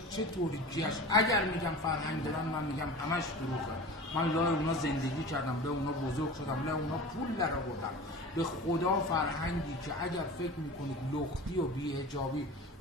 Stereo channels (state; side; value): normal; both; correlation 0.35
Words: چه توریکیش. اگر میگم فرهنگ دارن، من میگم همش دروغه. من لای اونا زندگی کردم، به اونا بزرگ شدم، لای اونا پول در آوردم. به خدا فرهنگی که اگر فکر میکنید لختی و بی‌حجابی